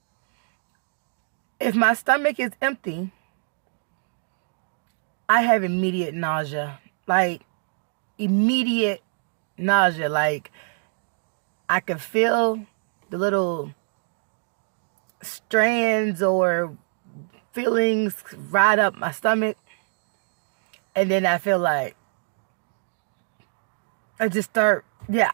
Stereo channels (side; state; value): left; silent; 62 dB below the other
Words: if my stomach is empty, I have immediate nausea. Immediate nausea. I can feel the little strands or feelings ride up my stomach, and then I feel like I just start, and